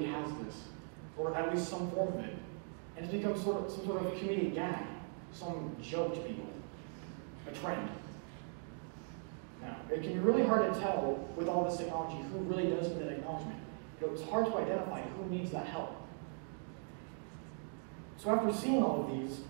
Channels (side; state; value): left; silent; 51 dB below the other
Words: has this, or at least some form of it. And it's become some sort of a comedic gag, some joke to people, a trend. Now, it can be really hard to tell with all this technology who really does need that acknowledgement. It's hard to identify who needs that help. So after seeing all these